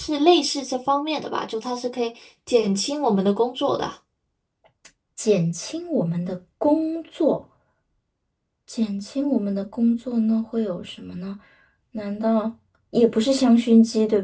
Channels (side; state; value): both; identical; correlation 1.00